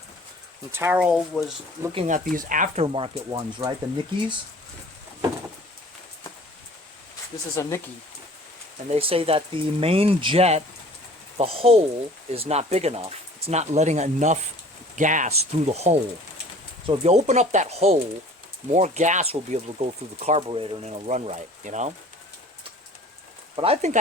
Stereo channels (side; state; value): both; normal; correlation 0.48